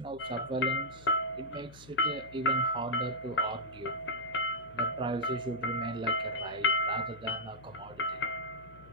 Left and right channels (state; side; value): noise; left; hum, 22 dB below the sound